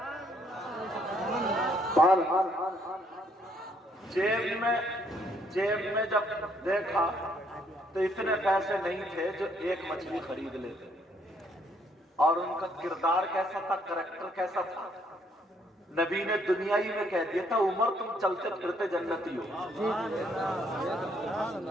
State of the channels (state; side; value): normal; both; correlation 0.68